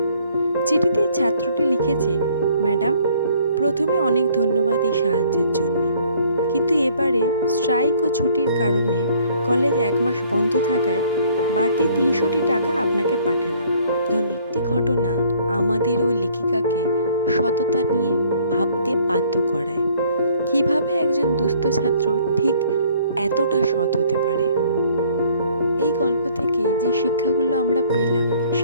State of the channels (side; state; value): both; inverted; correlation -0.60